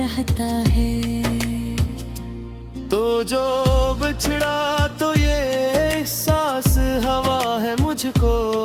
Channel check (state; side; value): identical; both; correlation 1.00